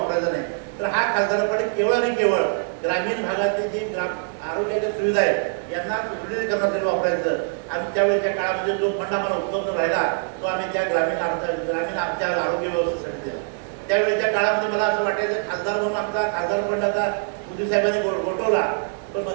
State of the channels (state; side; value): silent; left; 63 dB below the other